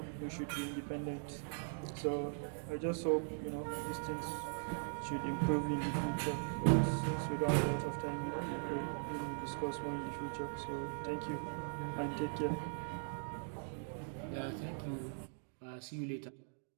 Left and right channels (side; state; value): left; silent; digital silence